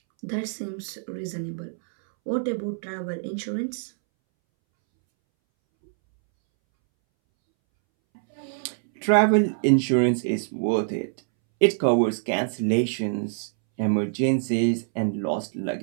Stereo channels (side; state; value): left; silent; 62 dB below the other